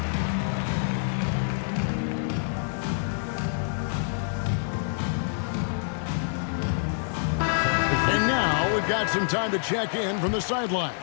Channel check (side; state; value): right; silent; 60 dB below the other